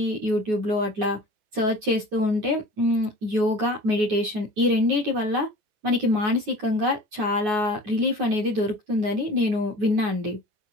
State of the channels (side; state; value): left; late; 9.4 ms